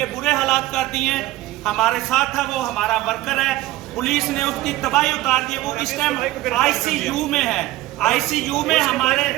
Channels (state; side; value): quieter; left; 16.6 dB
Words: برے حالات کر دیے ہیں. ہمارے ساتھ ہے وہ, ہمارا ورکر ہے, پولیس نے اس کی تباہی اتار دی. وہ اس ٹائم آئی سی یو میں ہے, آئی سی یو میں